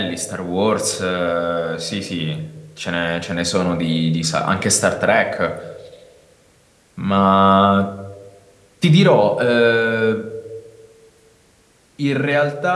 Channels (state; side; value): identical; both; correlation 1.00